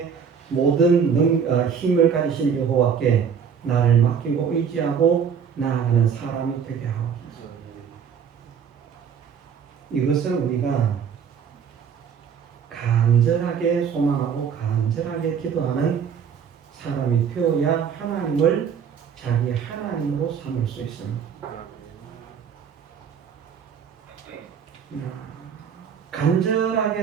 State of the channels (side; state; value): left; quieter; 7.2 dB